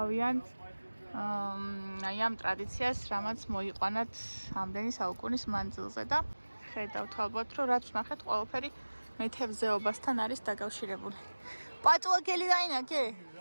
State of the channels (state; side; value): inverted; both; correlation -1.00